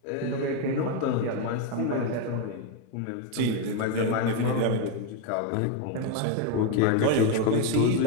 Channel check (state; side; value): different; both; correlation 0.02